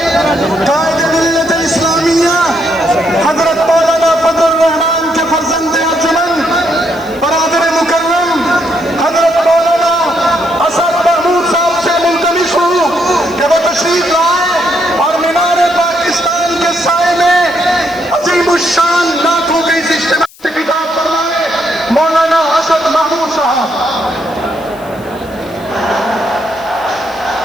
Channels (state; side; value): noise; left; hiss, 24 dB below the sound